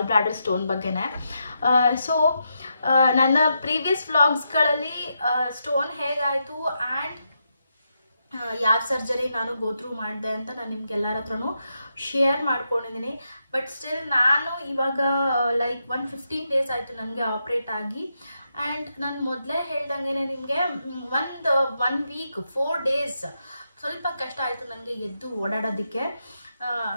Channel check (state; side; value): inverted; both; correlation -0.83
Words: bladder stone ಬಗ್ಗೆನೇ. So ನನ್ನ previous ವ್ಲಾಗ್ಸ್ಗಳಲ್ಲಿ stone ಹೇಗಾಯಿತು and ಯಾವ ಸರ್ಜರಿ ನಾನು ಗೋತ್ರೂ ಮಾಡಿದೆ ಅಂತ ನಾನು ನಿಮ್ಗೆಲ್ಲರ ಹತ್ರನೂ ಶೇರ್ ಮಾಡ್ಕೊಂಡಿದ್ದೀನಿ. ಬಟ್ ಸ್ಟಿಲ್ ನಾನು ಇವಾಗ ಲೈಕ್ 15 ಡೇಸ್ ಆಯಿತು ನನಗೆ ಆಪ್ರೇಟ್ ಆಗಿ. ಆ್ಯಂಡ್ ನಾನು ಮೊದಲೇ ಹೇಳ್ದಂಗೆ ನಿಮಗೆ ಒನ್ ವೀಕ್ 4 ಡೇಸ್ ಸ್ವಲ್ಪ ಕಷ್ಟ ಆಯಿತು ನನಗೆ ಎದ್ದು ಓಡಾಡೋದಕ್ಕೆ.